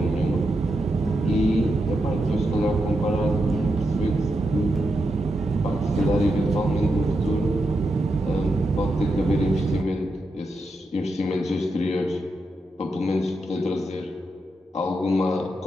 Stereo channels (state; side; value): normal; both; correlation 0.85